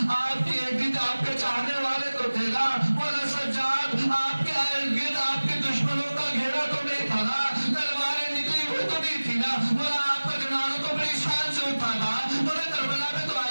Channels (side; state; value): both; inverted; correlation -1.00